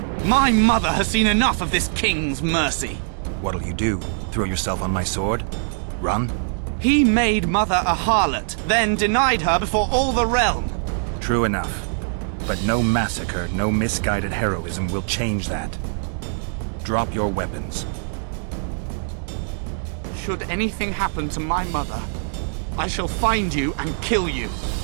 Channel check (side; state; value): left; silent; digital silence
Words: My mother has seen enough of this king's mercy. What'll you do? Throw yourself on my sword? Run? He made mother a harlot, then denied her before all the realm. True enough. But no massacre, no misguided heroism will change that. Drop your weapons. Should anything happen to my mother, I shall find you and kill you.